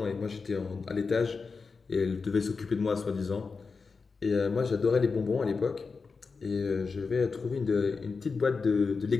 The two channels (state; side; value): quieter; right; 4.7 dB